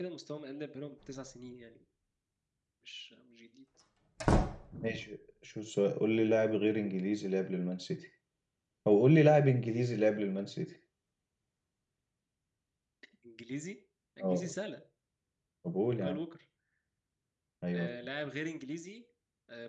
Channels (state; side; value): identical; both; correlation 1.00